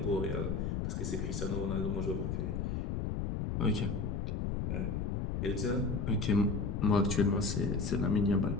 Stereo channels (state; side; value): noise; left; rumble, 1 dB below the sound